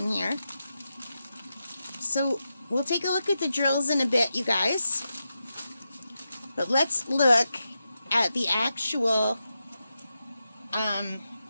here. So we'll take a look at the drills in a bit, you guys. But let's look at the actual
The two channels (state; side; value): inverted; both; correlation -0.89